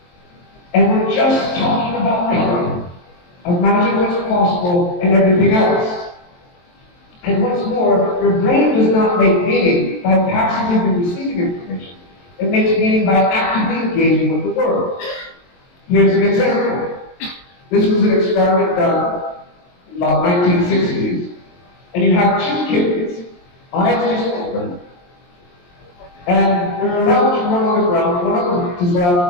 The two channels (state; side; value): late; right; 23 ms